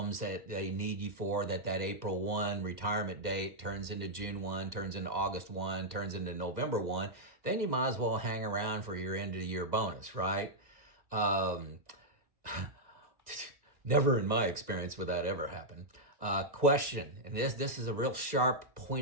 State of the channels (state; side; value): late; left; 2.0 ms